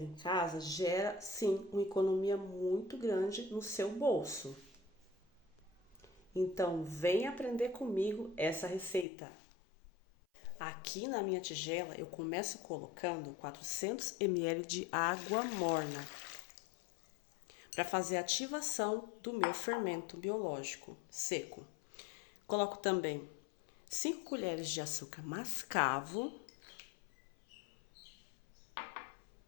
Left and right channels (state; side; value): drops out; right; at 9.1 s